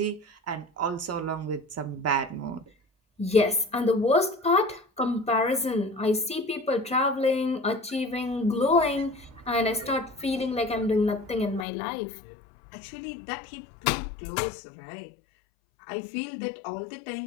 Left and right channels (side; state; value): right; drops out; at 11.7 s